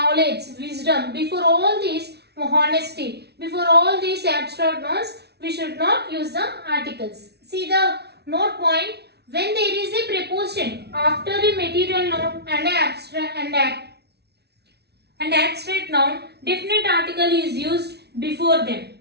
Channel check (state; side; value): late; left; 0.49 ms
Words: wisdom. Before all these, honesty. Before all these abstract nouns, we should not use the articles. See the note point. When there is a preposition after a material noun and abstract noun, definite article is used before them.